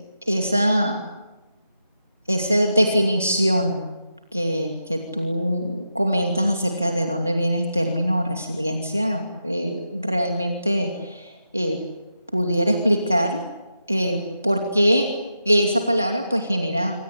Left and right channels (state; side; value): inverted; both; correlation -0.86